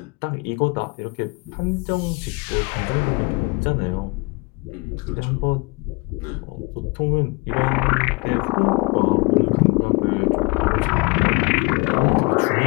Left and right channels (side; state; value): right; quieter; 27.0 dB